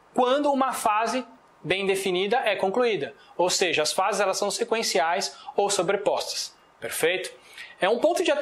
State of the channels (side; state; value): both; identical; correlation 1.00